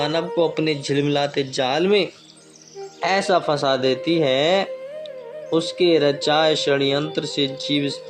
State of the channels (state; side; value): identical; both; correlation 1.00